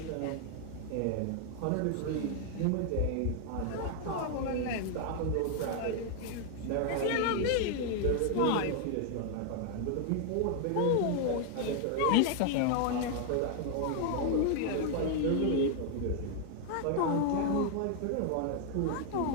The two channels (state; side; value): different; both; correlation 0.00